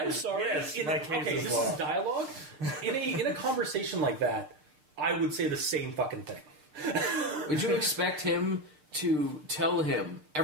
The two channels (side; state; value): left; late; 6.6 ms